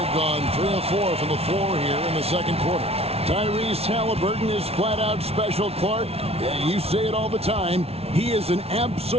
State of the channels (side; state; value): left; late; 0.30 ms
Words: gone 3 of 4 from the floor here in the second quarter. Tyrese Halliburton is flat-out special, Clark. You say it all the time. He is an